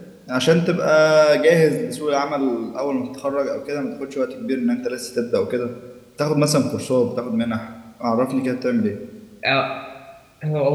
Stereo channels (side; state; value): both; identical; correlation 1.00